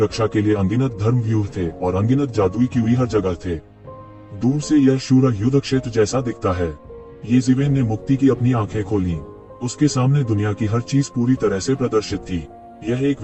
के लिए अनगिनत धर्म व्यूह थे और अनगिनत जादुई कीवी हर जगह थे। दूर से यह शूरा युद्ध क्षेत्र जैसा दिखता है। ये ज़िवेन ने मुक्ति की अपनी आंखें खोली। उसके सामने दुनिया की हर चीज पूरी तरह से प्रदर्शित थी। यह एक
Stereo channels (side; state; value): both; identical; correlation 1.00